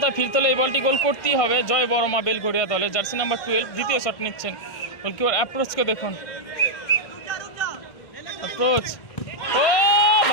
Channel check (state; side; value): late; right; 1.5 ms